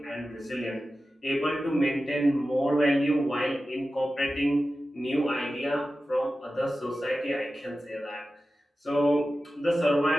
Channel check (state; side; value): normal; both; correlation 0.94